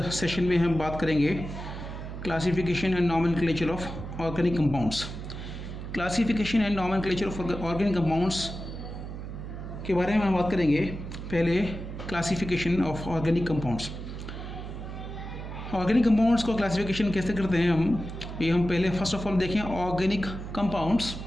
सेशन में हम बात करेंगे classification and nomenclature of organic compounds. Classification and nomenclature of organic compounds के बारे में हम बात करेंगे। पहले classification of organic compounds. Organic compounds को क्लासिफिकेशन कैसे करते हैं हम पहले फर्स्ट ऑफ ऑल देखें organic compounds.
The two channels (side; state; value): right; noise; hum, 8 dB below the sound